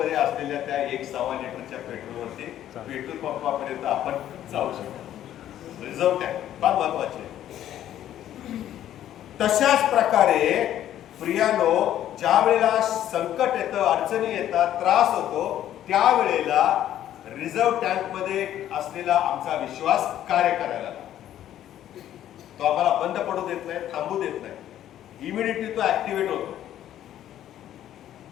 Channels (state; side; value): quieter; right; 11.7 dB